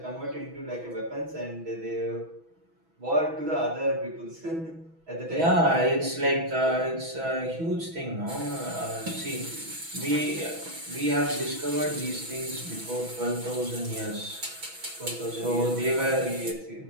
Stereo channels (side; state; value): left; late; 6.1 ms